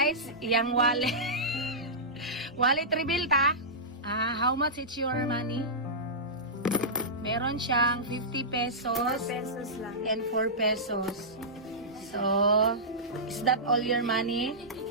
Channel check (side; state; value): both; normal; correlation -0.16